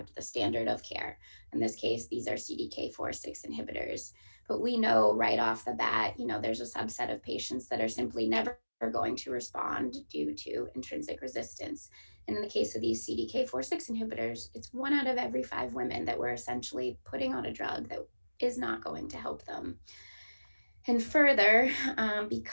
the standard of care. In this case, these are CDK4/6 inhibitors. But we know right off the bat, there's a subset of patients that are simply never going to respond due to intrinsic resistance. And in the case of these CDK4/6 inhibitors, it's 1 out of every 5 women that we're essentially putting on a drug that is not going to help them. And further,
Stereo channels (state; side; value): inverted; both; correlation -1.00